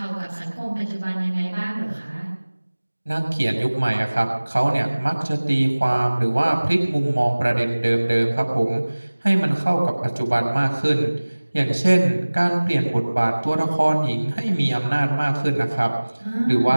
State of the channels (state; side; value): inverted; both; correlation -1.00